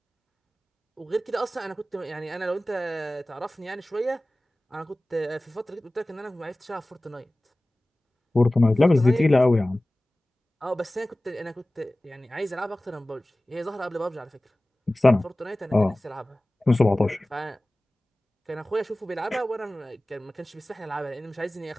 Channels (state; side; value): normal; both; correlation 0.97